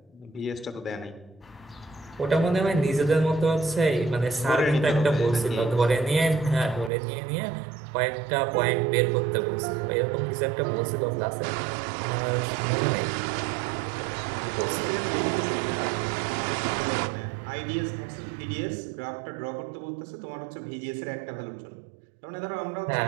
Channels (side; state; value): left; drops out; at 6.9 s